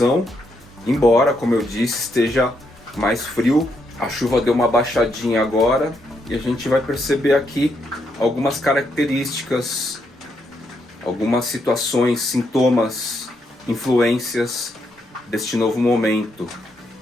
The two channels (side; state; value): both; normal; correlation 0.78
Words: embora, como eu disse, esteja mais frio. A chuva deu uma baixadinha agora e a gente vai perceber aqui algumas características, algumas situações, sintomas, influências deste novo momento,